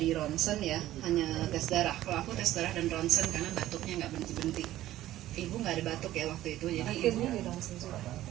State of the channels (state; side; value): quieter; left; 14.3 dB